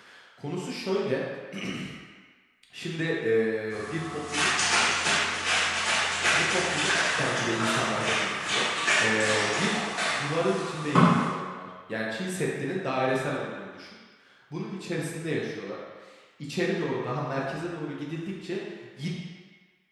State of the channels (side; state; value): both; identical; correlation 1.00